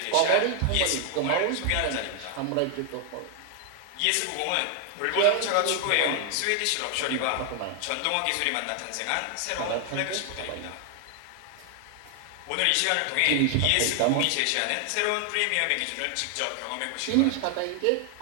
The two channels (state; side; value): different; both; correlation 0.00